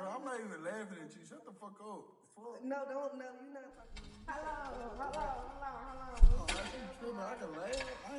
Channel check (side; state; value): both; identical; correlation 1.00